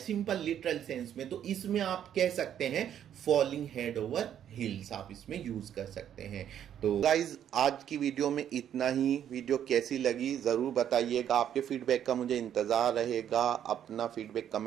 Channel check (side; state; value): left; quieter; 9.9 dB